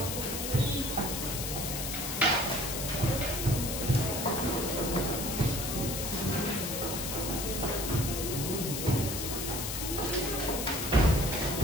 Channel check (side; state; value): left; noise; hiss, 3 dB below the sound